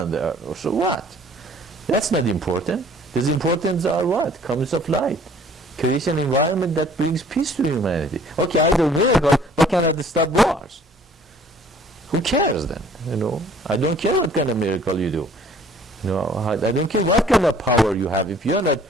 the earth. So what? That's not important. The importance are what? Comes of light. Create an environment that brings peace to humanity. Okay, I do miracles, but can I stop wars? Who cares then? I don't care what kind of miracle you do. I don't care what kind of power you have. If you're not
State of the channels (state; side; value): normal; both; correlation 0.54